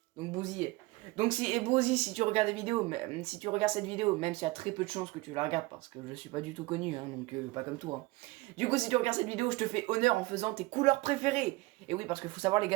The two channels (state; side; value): quieter; left; 21.4 dB